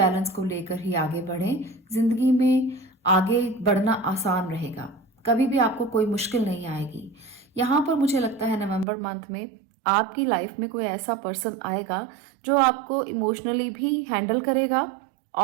को लेकर ही आगे बढ़ें। जिंदगी में आगे बढ़ना आसान रहेगा, कभी भी आपको कोई मुश्किल नहीं आएगी। यहाँ पर मुझे लगता है नवंबर मंथ में आपकी लाइफ में कोई ऐसा पर्सन आएगा जो आपको इमोशनली भी हैंडल करेगा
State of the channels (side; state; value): left; drops out; at 8.8 s